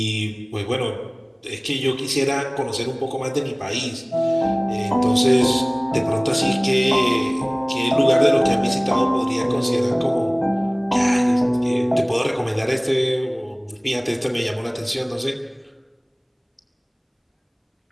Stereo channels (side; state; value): both; identical; correlation 1.00